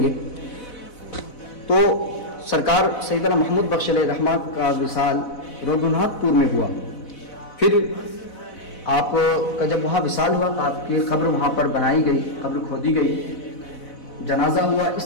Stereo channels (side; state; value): right; late; 4.0 ms